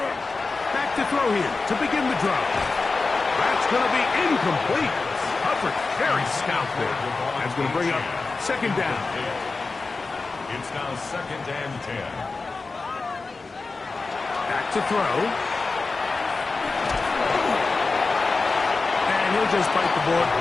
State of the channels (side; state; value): right; quieter; 3.9 dB